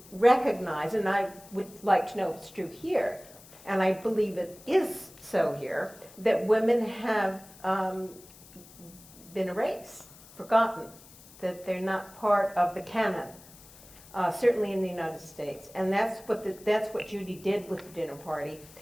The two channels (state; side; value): noise; left; hiss, 21 dB below the sound